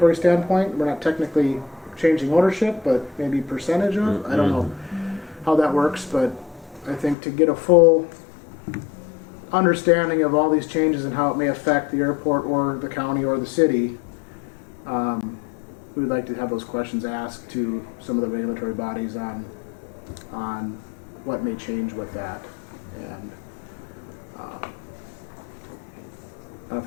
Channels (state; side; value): drops out; right; at 7.2 s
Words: standpoint. We're not technically changing ownership, but maybe percentage of. I don't know how that works, but I think to get a full understanding of all these changes and how it may affect the airport or the county or the city, we would like to have those questions asked to some of the regulatory bodies on what may change with that. And I don't know if